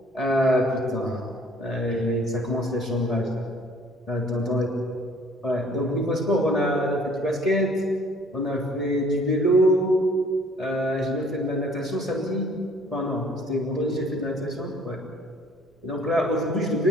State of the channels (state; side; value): normal; both; correlation 0.56